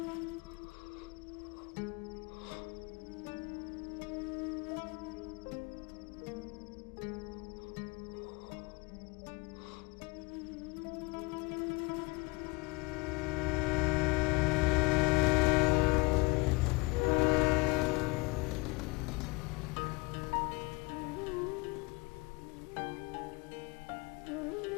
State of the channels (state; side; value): quieter; right; 25.7 dB